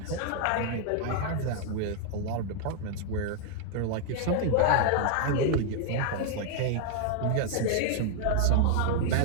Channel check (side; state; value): both; different; correlation 0.00